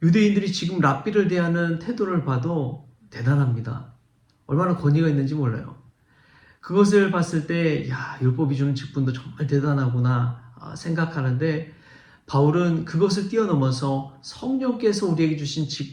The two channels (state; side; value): identical; both; correlation 1.00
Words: 유대인들이 지금 랍비를 대하는 태도를 봐도 대단합니다. 얼마나 권위가 있는지 몰라요. 그것을 봤을 때 율법이 주는 직분도 정말 대단하구나 생각하는데 바울은 그것을 뛰어넘어서 성령께서 우리에게 주신